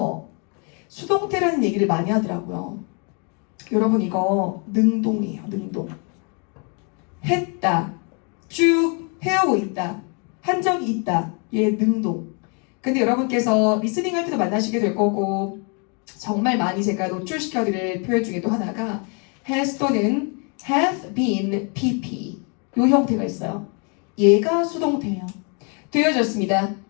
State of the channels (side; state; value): right; quieter; 36.4 dB